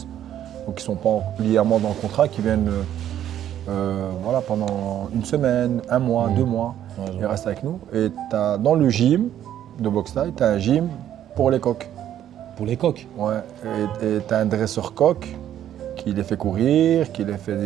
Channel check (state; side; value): quieter; left; 11.0 dB